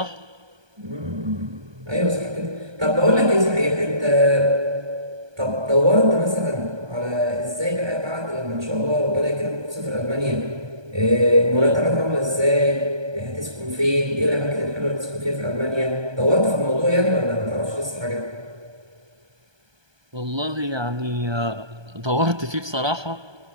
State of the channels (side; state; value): left; late; 1.2 ms